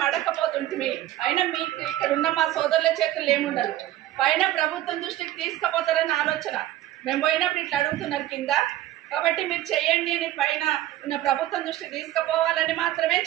అడగకపోతుంటిమి. అయినా మీకు ఇక్కడ ఉన్న మా సోదరుల చేతుల్లో ఏముండదు. పైన ప్రభుత్వం దృష్టికి తీసుకుపోతారని ఆలోచన. మేము పోయినప్పుడు ఇట్లా అడుగుతున్నారు కింద. కాబట్టి మీరు చేయండి అని పైన ఉన్న ప్రభుత్వం దృష్టికి తీసుకుపోవాలని మాత్రమే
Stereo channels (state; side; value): quieter; left; 13.9 dB